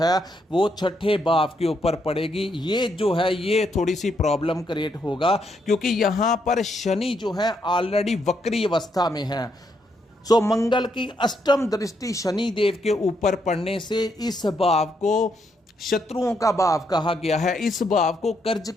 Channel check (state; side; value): normal; both; correlation 0.77